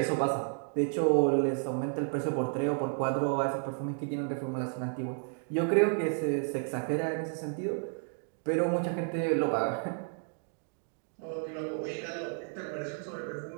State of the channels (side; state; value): left; silent; 56 dB below the other